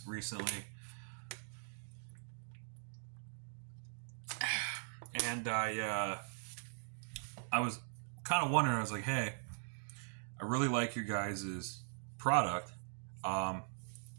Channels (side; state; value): left; silent; digital silence